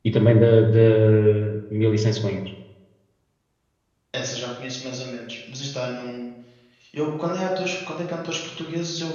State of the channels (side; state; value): both; identical; correlation 1.00